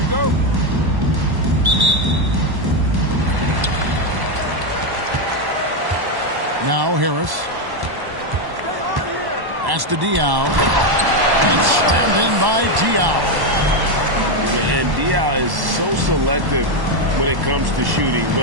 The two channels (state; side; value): late; left; 1.1 ms